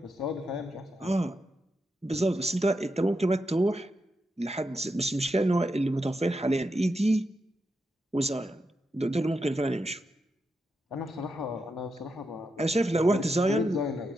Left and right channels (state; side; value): normal; both; correlation 0.85